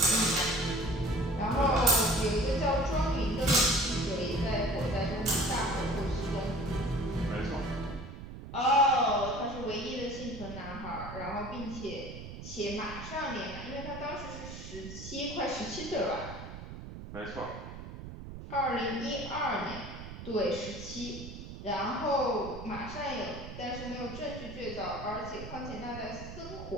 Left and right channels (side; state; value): right; noise; rumble, 11 dB below the sound